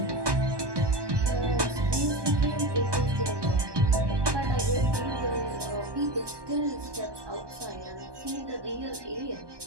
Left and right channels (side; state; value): left; late; 1.2 ms